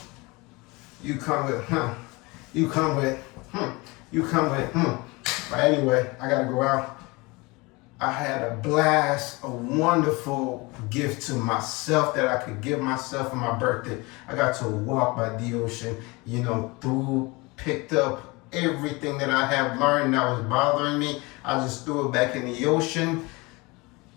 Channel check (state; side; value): quieter; right; 24.9 dB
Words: You come with, You come with, You come with, But anyway, I got to go out. I had a blast, a wonderful gift to myself that I could give myself for my birthday. I got to walk by the ocean, picked up everything that I have learned that was bothering me. I just threw it back in the ocean,